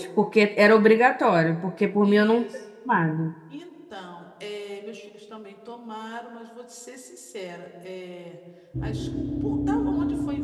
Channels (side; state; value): both; identical; correlation 1.00